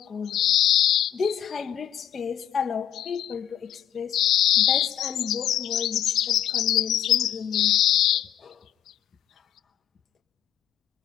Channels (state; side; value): quieter; right; 10.3 dB